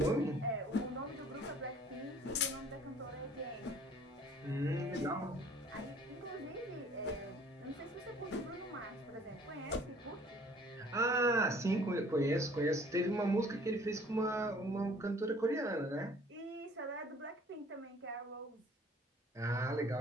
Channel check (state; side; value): normal; both; correlation 0.54